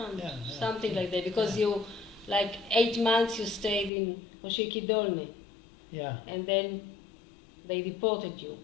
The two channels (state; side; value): drops out; right; at 3.9 s